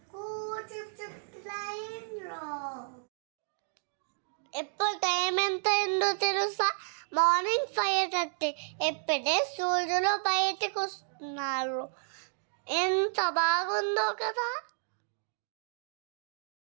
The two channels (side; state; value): left; silent; digital silence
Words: ట్రైన్లో. ఇప్పుడు టైం ఎంత అయిందో తెలుసా? మార్నింగ్ 5:30. ఎప్పుడే సూర్యులు బయటకు వస్తున్నారు. ఎంత బాగుందో కదా.